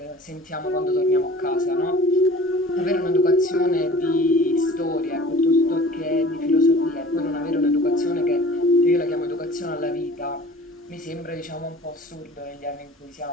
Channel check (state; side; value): normal; both; correlation 0.45